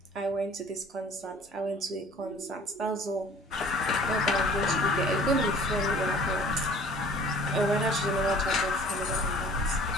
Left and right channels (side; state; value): both; normal; correlation 0.50